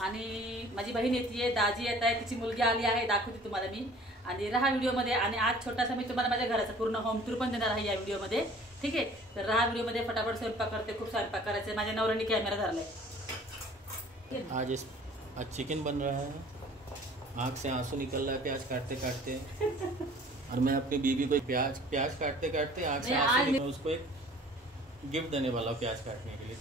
आणि माझी बहीण येते, दाजी येत आहे, तिची मुलगी आली आहे, दाखवते तुम्हाला मी. आणि राहा व्हिडिओमध्ये. आणि आज छोटासा मी तुम्हाला माझ्या घराचा पूर्ण होम टूर पण देणार आहे या व्हिडिओमध्ये. ठीक आहे, तर राहा व्हिडिओमध्ये. फटाफट स्वयंपाक करते, खूप स्वयंपाक करायचे. माझ्या नवऱ्याने कॅमेरा धरलाय. आज चिकन बन रहा है, आँख से आंसू निकल रहा है प्याज काटते काटते. और मैं अपनी बीवी को प्याज काटते काटते आँख से आंसू निकल, उसको एक गिफ्ट देने वाला हूं प्याज काटने के लिए.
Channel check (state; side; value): normal; both; correlation 0.50